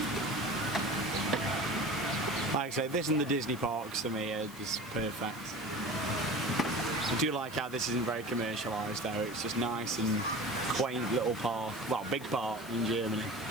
Like I say, this and the Disney parks to me are just perfect. I do like how this isn't very commercialised though, it's just nice and quaint little park, well, big park in Germany.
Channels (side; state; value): left; noise; hiss, 19 dB below the sound